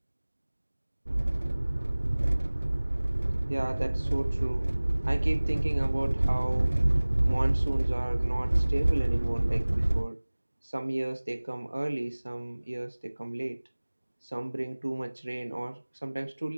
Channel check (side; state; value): both; inverted; correlation -1.00